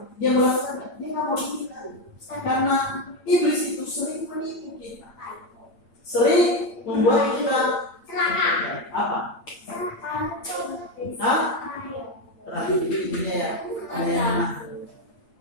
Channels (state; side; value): late; right; 8.7 ms